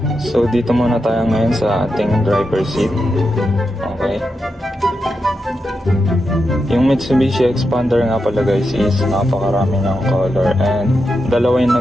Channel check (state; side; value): normal; both; correlation 0.87